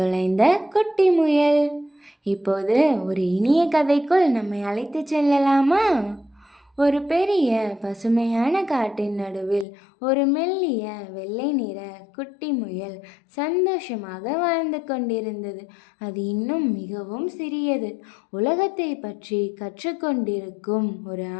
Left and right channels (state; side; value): drops out; right; at 9.7 s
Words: குட்டி முயல். இப்போது ஒரு இனிய கதைக்குள் நம்மை அழைத்து செல்லலாமா? ஒரு பெரிய பசுமையான காட்டின் நடுவில் ஒரு மெல்லிய வெள்ளை நிற குட்டி முயல் சந்தோஷமாக வாழ்ந்து கொண்டிருந்தது. அது இன்னும் மிகவும் சிறியது. உலகத்தை பற்றி கற்றுக்கொண்டிருக்கும் ஒரு